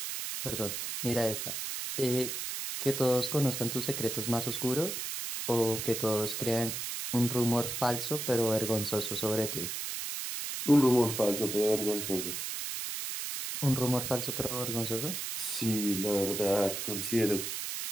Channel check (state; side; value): noise; right; hiss, 4 dB below the sound